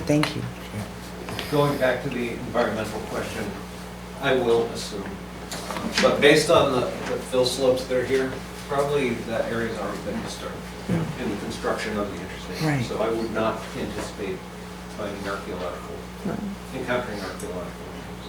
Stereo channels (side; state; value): both; identical; correlation 1.00